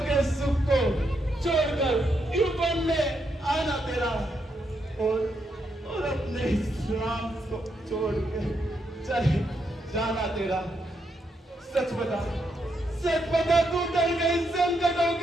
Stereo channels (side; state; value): both; normal; correlation 0.80